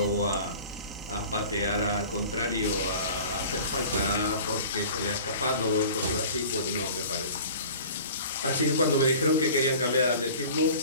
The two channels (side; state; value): both; inverted; correlation -0.42